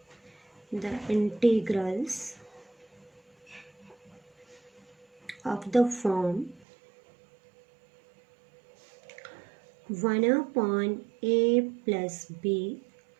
the integrals of the form 1 upon a plus b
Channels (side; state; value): left; drops out; at 6.7 s